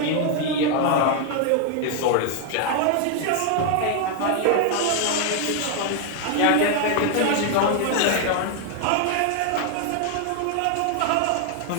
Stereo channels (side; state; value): both; different; correlation 0.00